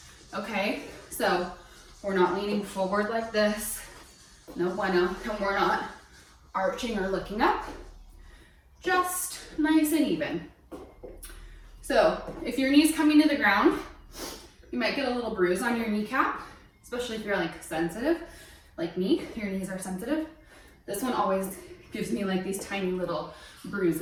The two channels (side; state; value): both; identical; correlation 1.00